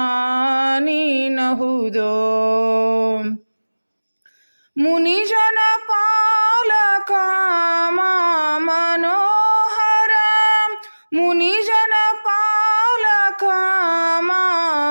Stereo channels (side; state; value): both; inverted; correlation -1.00